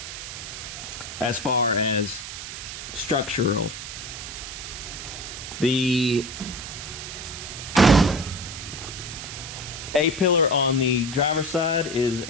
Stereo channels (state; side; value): noise; right; hiss, 9 dB below the sound